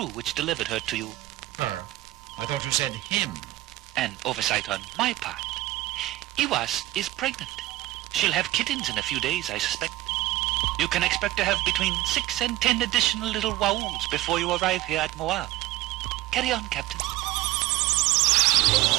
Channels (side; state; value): left; quieter; 16.7 dB